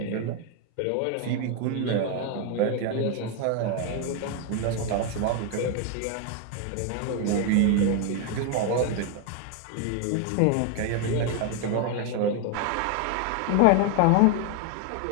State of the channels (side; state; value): both; different; correlation 0.01